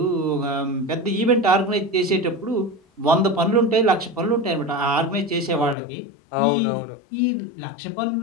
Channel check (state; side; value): drops out; right; at 5.8 s